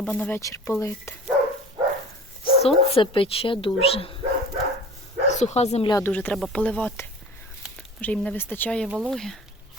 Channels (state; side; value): normal; both; correlation 0.40